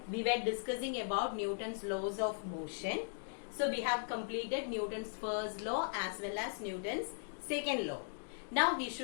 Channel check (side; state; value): right; silent; digital silence